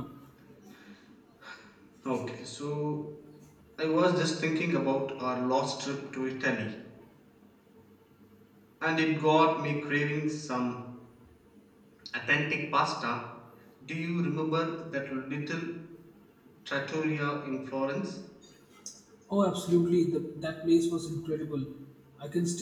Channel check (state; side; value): identical; both; correlation 1.00